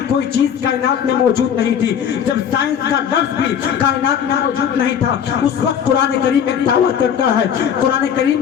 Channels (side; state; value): right; quieter; 8.4 dB